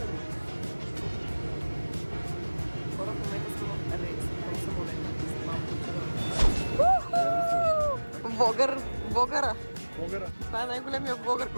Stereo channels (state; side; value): inverted; both; correlation -1.00